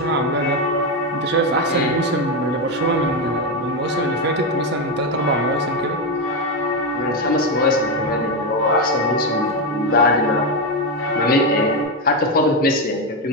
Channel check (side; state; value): both; normal; correlation 0.09